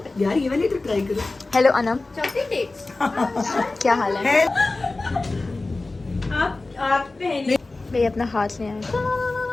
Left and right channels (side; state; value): right; quieter; 3.3 dB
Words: यार ये वाली तो ट्राई करो. Hello Anam. Chutney dates. क्या हाल है? आप पहले भाई अपना हाथ ले आए.